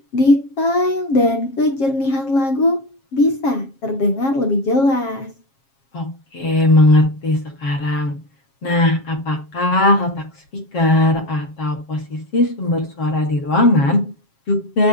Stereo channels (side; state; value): right; late; 7.4 ms